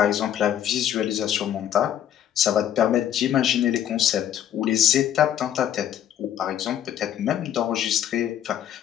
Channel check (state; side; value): quieter; right; 10.5 dB